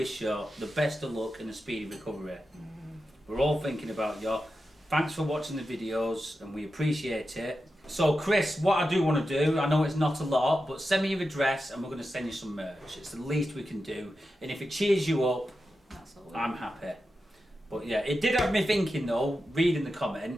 you the best of luck and a speedy recovery. We're all thinking about you. Thanks for watching the videos, and we appreciate it. So, Chris, what I do want to do, I know it's not a lot, but send me your address, and we're going to send you some merch. It's the least we can do, and if it cheers you up, I'm happy. But yeah, it did have me thinking though, reading the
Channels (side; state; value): both; normal; correlation 0.90